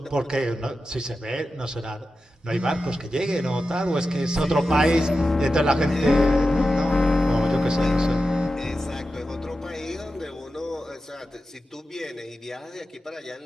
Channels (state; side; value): normal; both; correlation 0.91